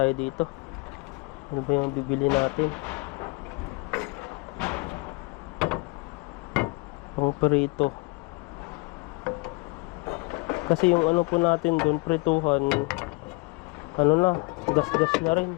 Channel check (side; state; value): right; quieter; 28.2 dB